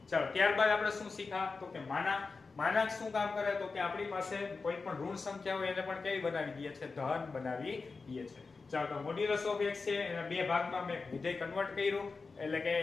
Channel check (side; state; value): right; quieter; 4.3 dB